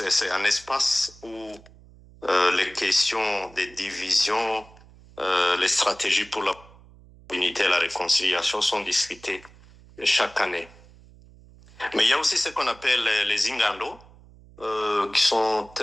un espace où les questions des divisions, les stratégies pour la unité et la réconciliation sont discutées chaque année. Mais il y a aussi ce qu'on appelle les ingando, qui sont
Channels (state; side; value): noise; right; hum, 24 dB below the sound